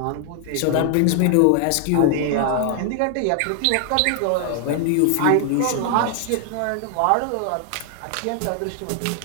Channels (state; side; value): different; both; correlation 0.00